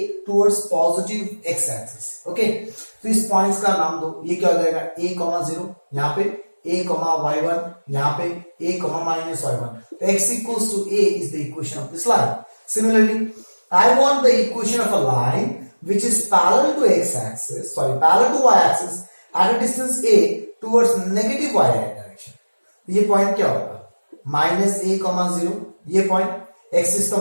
towards positive x-axis. Okay? तो इस points का नाम दो. ये क्या हो जाएगा? a, 0. यहाँ पे a, y1. यहाँ पे a, minus y1. तो x equals to a is the equation of this line. Similarly, I want the equation of a line which is parallel to x-axis, parallel to y-axis at a distance a towards negative y direction. ये point क्या होगा? -a, 0. ये point x is तो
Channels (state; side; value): inverted; both; correlation -1.00